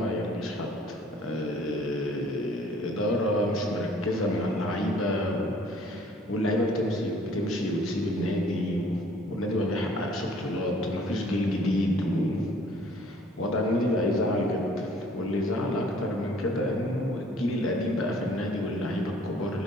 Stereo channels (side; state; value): both; normal; correlation 0.56